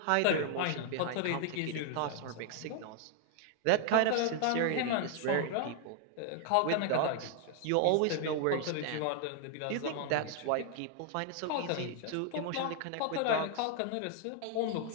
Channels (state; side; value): different; both; correlation 0.00